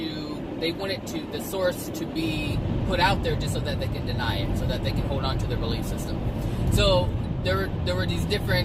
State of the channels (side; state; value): both; identical; correlation 1.00